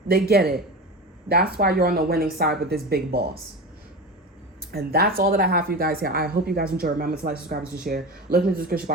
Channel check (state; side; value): normal; both; correlation 0.27